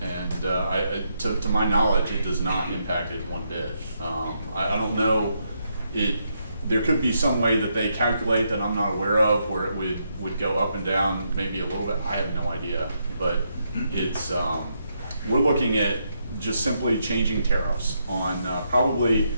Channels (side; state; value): both; inverted; correlation -0.79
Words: to my knowledge, it does not impact it one bit. I don't know, there could be some way that they calculate that I'm not aware of where it would go up and down maybe a little bit. I have no idea, but it's we're looking at just simply changing tariffs on probably,